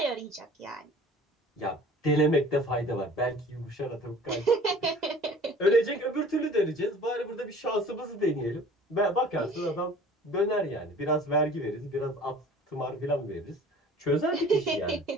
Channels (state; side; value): normal; both; correlation 0.47